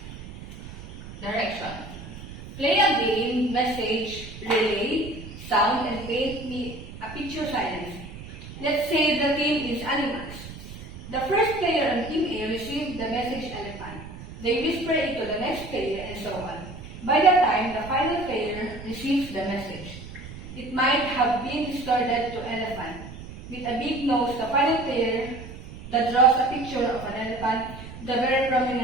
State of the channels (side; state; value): right; noise; rumble, 13 dB below the sound